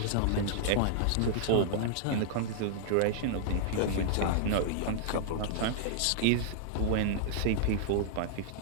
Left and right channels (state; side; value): different; both; correlation -0.01